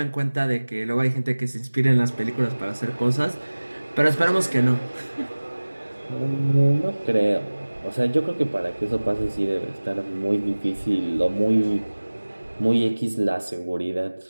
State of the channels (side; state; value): both; inverted; correlation -1.00